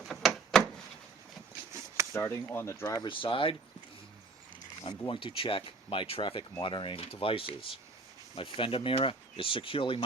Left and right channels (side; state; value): left; quieter; 3.8 dB